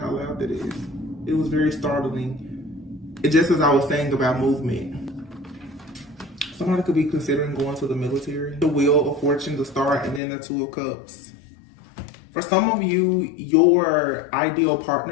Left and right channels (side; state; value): right; drops out; at 10.2 s